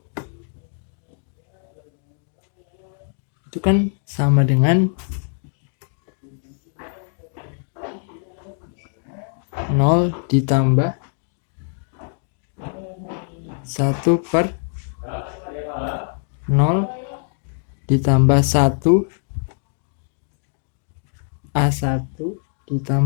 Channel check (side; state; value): right; silent; digital silence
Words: Itu kan sama dengan 0 ditambah 1 per 0 ditambah 1 A1